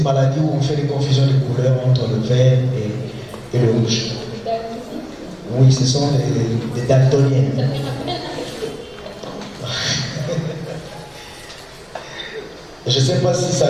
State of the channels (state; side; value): identical; both; correlation 1.00